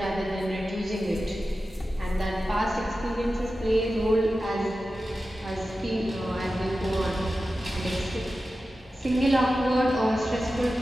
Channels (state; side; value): normal; both; correlation 0.93